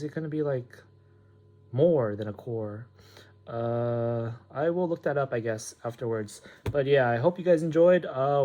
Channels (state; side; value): identical; both; correlation 1.00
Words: it going to be like more than a core? I will look that up, I guess, afterwards. But yeah, I hope you guys enjoyed